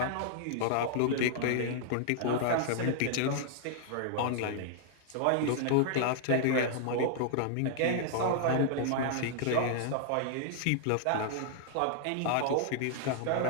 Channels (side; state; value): both; different; correlation -0.01